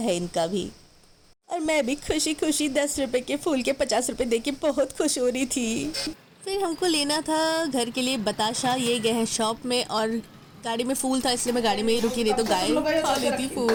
इनका भी। और मैं भी खुशी खुशी 10 रुपए के फूल के 50 रुपए दे के बहुत खुश हो रही थी। फिर हमको लेना था घर के लिए बताशा। ये गए हैं शॉप में, और गाड़ी में फूल था इसलिए मैं गाड़ी में ही रुकी, नहीं तो गाय खा लेती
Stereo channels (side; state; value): both; identical; correlation 1.00